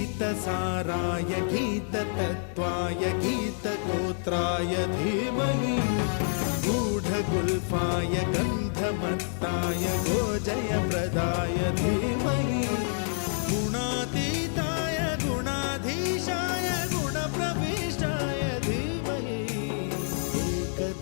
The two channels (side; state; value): right; silent; digital silence